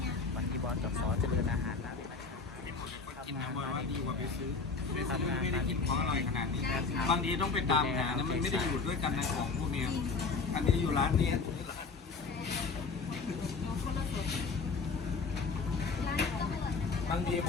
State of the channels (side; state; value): right; quieter; 4.5 dB